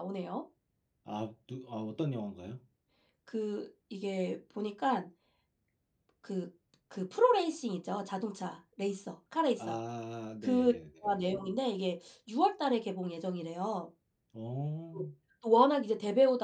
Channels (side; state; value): both; identical; correlation 1.00